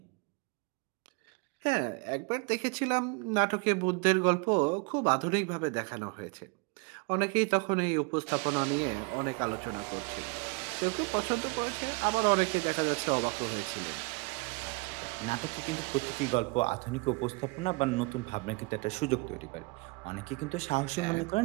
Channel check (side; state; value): left; quieter; 28.8 dB